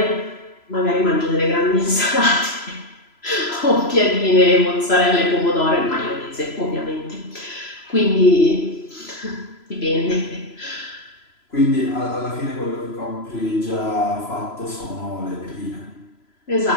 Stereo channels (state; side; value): late; right; 3.0 ms